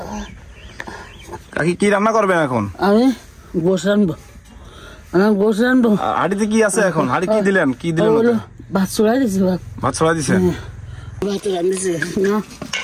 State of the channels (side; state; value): both; identical; correlation 1.00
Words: কাকি কি রান্না করবেন এখন? আমি গোশ রানবো, হাড়িতে কি আছে এখন? হাড়ি কি দিলেন? কি দিলেন? ভাত ছড়াই দিছি, ভাত ছড়াই দিছে। ভাত রান্ধিছে না,